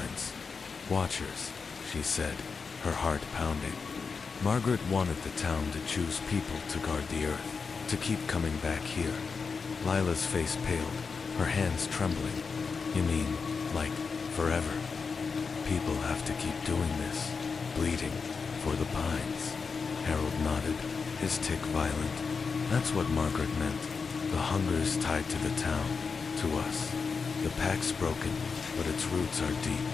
"Watchers," she said, her heart pounding. Margaret wanted the town to choose people to guard the earth, to keep coming back here. Lila's face paled, her hands trembling. "You mean, like, forever? People have to keep doing this, bleeding, for the pines." Harold nodded, his tick violent. "That's what Margaret meant. The hunger's tied to the town, to us. The pack's broken, but its roots are deep.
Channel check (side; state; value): right; quieter; 5.1 dB